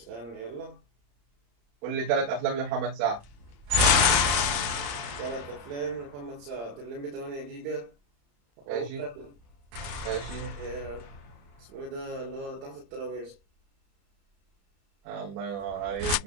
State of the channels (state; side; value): late; left; 35 ms